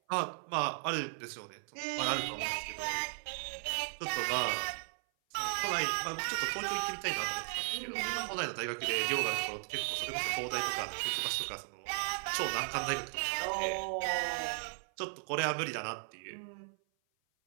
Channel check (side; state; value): left; silent; 54 dB below the other